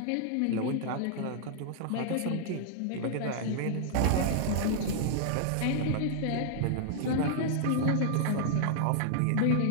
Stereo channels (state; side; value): different; both; correlation -0.01